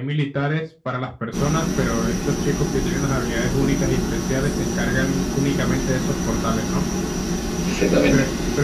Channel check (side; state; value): both; identical; correlation 1.00